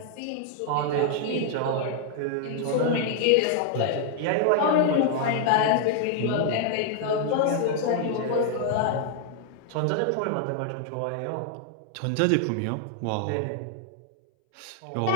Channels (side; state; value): both; different; correlation 0.00